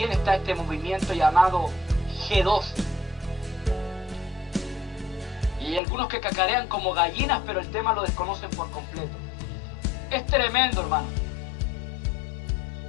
está este movimiento llamado G12. Y hay algunos que cacarean como gallinas, pero el tema lo desconocen por completo. Es tremendo, hermano.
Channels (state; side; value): drops out; right; at 5.8 s